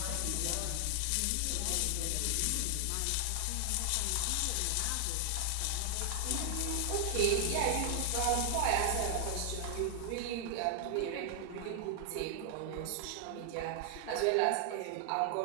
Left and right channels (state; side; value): different; both; correlation 0.00